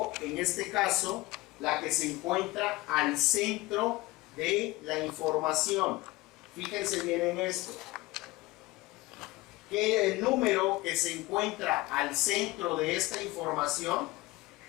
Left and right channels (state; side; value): quieter; right; 20.6 dB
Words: en este caso la que se encuentra al centro de la información. Fíjense bien en esto, que el número que se encuentra al centro de esta información,